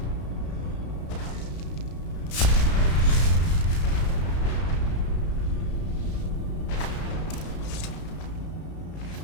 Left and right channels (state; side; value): late; right; 33 ms